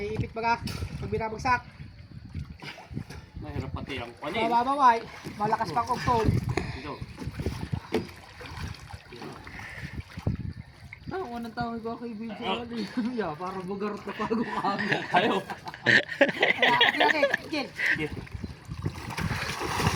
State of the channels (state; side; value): identical; both; correlation 1.00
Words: baga, pag binabagsak. Mahirap pati ang panin. Mababaway, malakas pang octol. Dito. Ang unang tawag ko kay video. Yeah, para bugarot na pago kami. Ayaw. Okay, Jil.